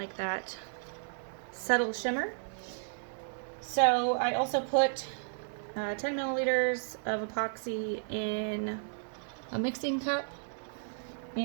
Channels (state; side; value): silent; left; digital silence